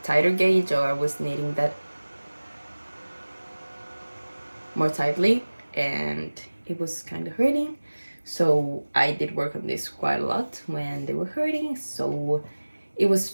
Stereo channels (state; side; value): inverted; both; correlation -1.00